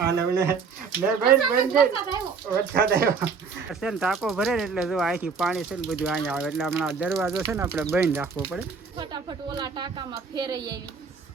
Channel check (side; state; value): left; quieter; 5.4 dB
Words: ટાંકો ભરે ને એટલે જો અહીંથી પાણી છે ને બધું અહીંયા આવે એટલે હમણાં દરવાજો છે ને આપણે બંધ રાખવો પડે. ફટાફટ ઓલા ટાંકામાં ફેરઈ આવી.